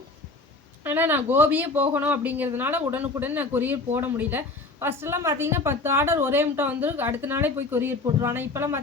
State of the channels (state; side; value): quieter; right; 3.5 dB